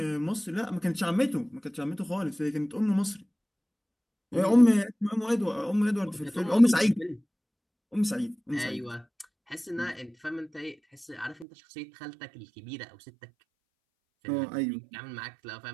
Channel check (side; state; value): left; drops out; at 11.5 s